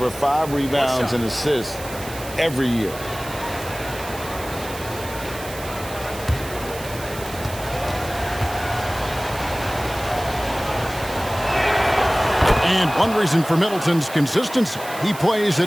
5 rebounds and assists every year. And one reason for Middleton's consistency, he plays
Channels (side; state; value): right; noise; hiss, 14 dB below the sound